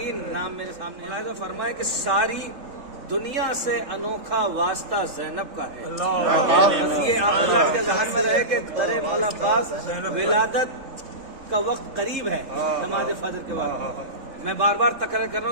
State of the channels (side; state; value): left; late; 3.7 ms